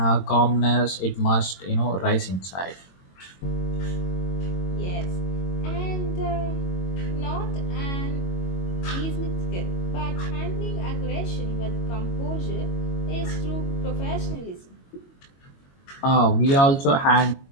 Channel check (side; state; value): right; late; 22 ms